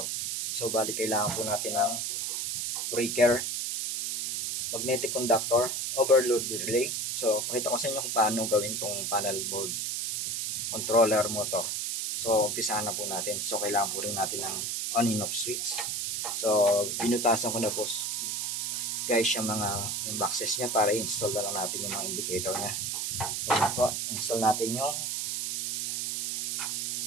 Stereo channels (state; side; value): noise; right; hiss, 1 dB below the sound